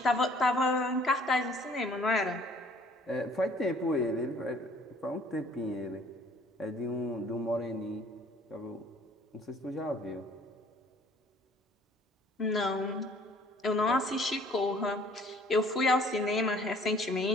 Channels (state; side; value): normal; both; correlation 0.56